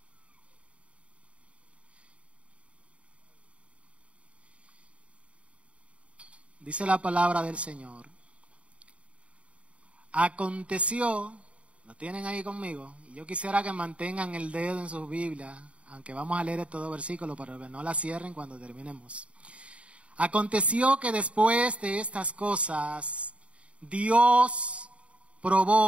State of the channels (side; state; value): left; late; 0.062 ms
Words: Dice la palabra del Señor. Aconteció, lo tienen ahí conmigo, y yo quisiera que mantengan el dedo en sus Biblias, aunque vamos a leer estos 2 versículos, pero que no la cierren cuando terminemos. Aconteció que después de estas cosas, Dios